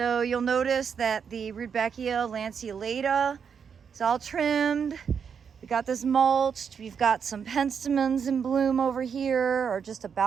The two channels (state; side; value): quieter; left; 6.9 dB